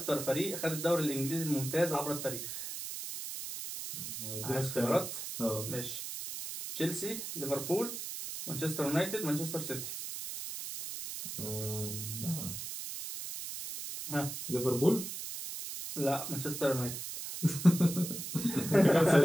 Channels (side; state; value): right; noise; hiss, 7 dB below the sound